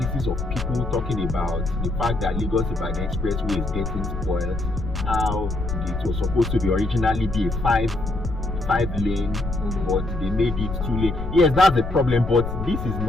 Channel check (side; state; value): left; noise; rumble, 5 dB below the sound